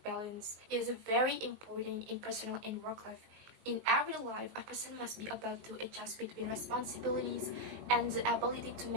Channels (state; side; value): late; left; 19 ms